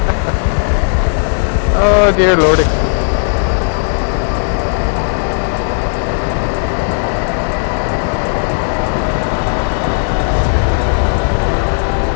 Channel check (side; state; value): right; silent; digital silence